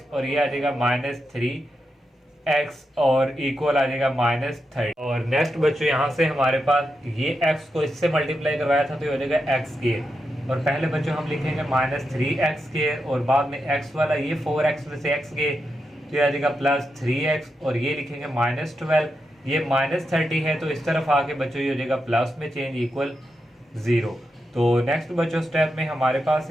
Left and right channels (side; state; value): both; normal; correlation 0.86